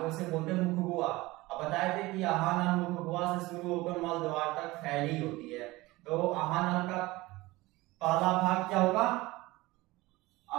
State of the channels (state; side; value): quieter; left; 20.3 dB